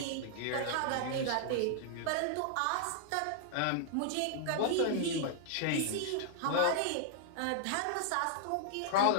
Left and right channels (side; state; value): both; different; correlation -0.01